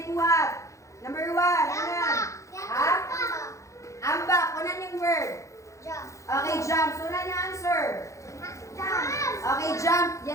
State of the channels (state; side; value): late; right; 0.15 ms